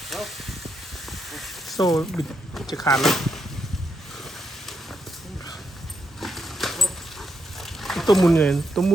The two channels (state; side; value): normal; both; correlation 0.81